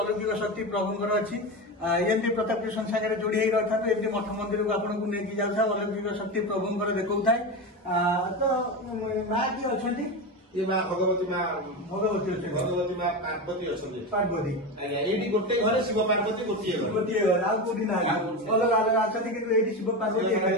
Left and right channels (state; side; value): normal; both; correlation 0.20